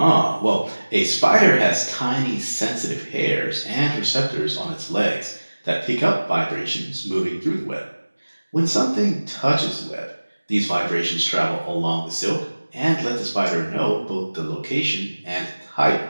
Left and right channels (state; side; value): inverted; both; correlation -1.00